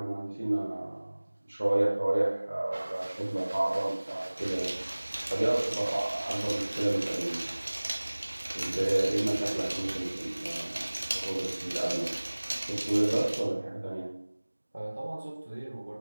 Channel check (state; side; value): inverted; both; correlation -1.00